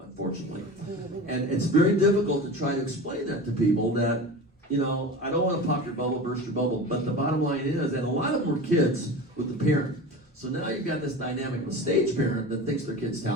unfortunately. And it's very difficult to try to explain that to people that, you know, I don't want to pop your bubble, burst your bubble, but the bottom line is, and a lot of them were kids with the parent. So now you've got this dynamic of a stage parent that thinks their kid's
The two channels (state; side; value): normal; both; correlation 0.32